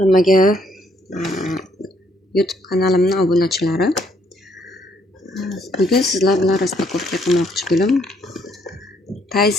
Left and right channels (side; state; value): both; normal; correlation 0.69